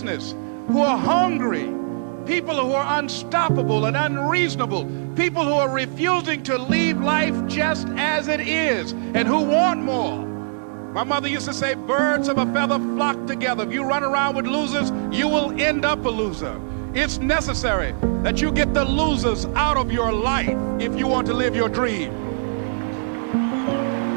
who are hungry, people who are unstoppable and unreasonable, people who are refusing to leave life just as it is and who want more. My mother used to say, birds of a feather flock together. If you run around with losers, you will end up a loser. It's necessary that you get the losers out of your life if you want to live your dream.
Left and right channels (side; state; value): left; silent; digital silence